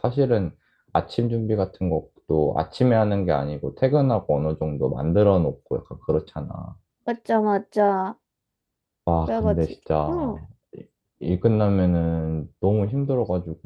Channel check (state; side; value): identical; both; correlation 1.00